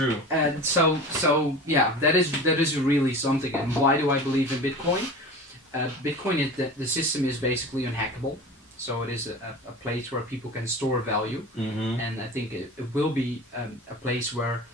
And so yeah, that is really something. And why do I believe in Bitcoin? Bitcoin is the system is basically unhackable, so it is a place where people can store value, and I think it will be a place where,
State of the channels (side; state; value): both; normal; correlation 0.35